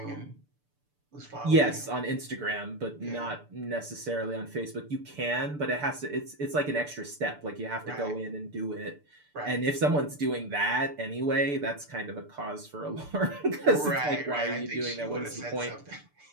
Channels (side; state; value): left; late; 6.8 ms